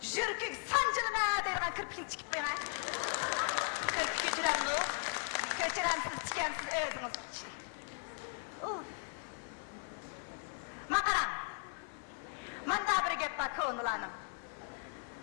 yurkik sanjilma degan kirpikni tikib qo'yaman. Kirpik ko'chiramni. Ko'chiramsiz tikansiz o'zingiz. Maqaram. Manda bir gap bor ko'nglanim.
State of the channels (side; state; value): right; silent; 53 dB below the other